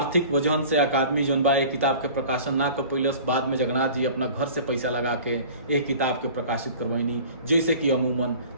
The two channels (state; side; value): inverted; both; correlation -0.43